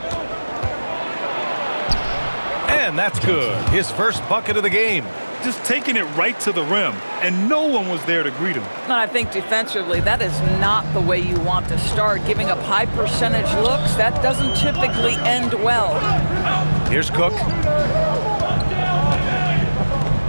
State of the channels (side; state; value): both; inverted; correlation -1.00